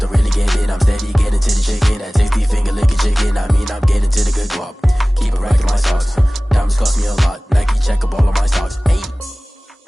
really get it. I'm steady getting to the chicken, that tasty finger licking chicken. I mean, I'm getting to the good guap. Keep it racking my socks. Diamonds cost me a lot. Nike check up all of my stocks.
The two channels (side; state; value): both; normal; correlation 0.98